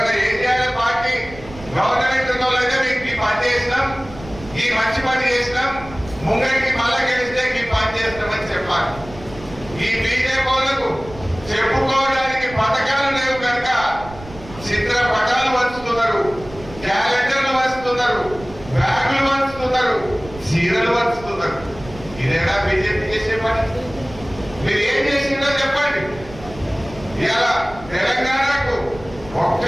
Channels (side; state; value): right; noise; rumble, 17 dB below the sound